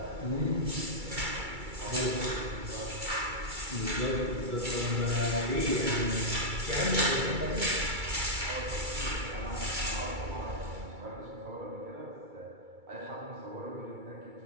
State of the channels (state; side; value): late; left; 2.3 ms